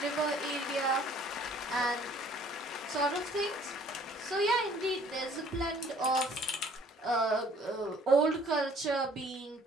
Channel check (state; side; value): normal; both; correlation 0.56